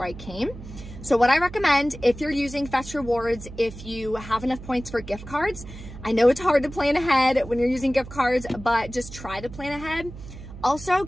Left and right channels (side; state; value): right; noise; hum, 14 dB below the sound